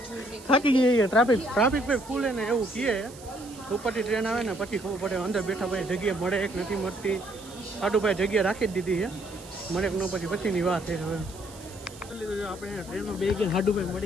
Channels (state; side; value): noise; right; hiss, 19 dB below the sound